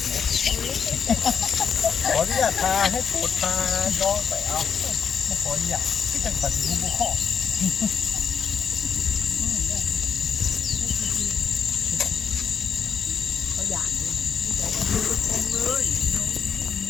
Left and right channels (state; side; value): quieter; right; 7.0 dB